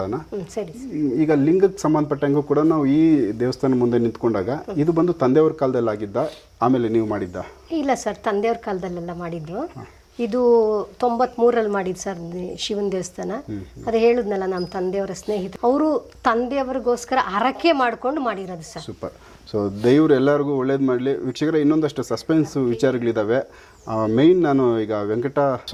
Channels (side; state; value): both; identical; correlation 1.00